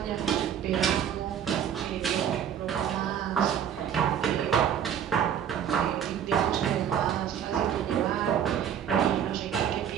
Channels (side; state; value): left; quieter; 9.0 dB